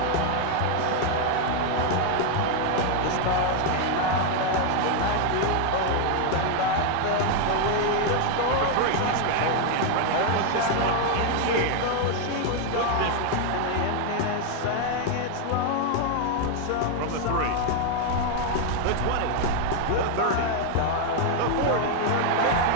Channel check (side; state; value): both; different; correlation 0.00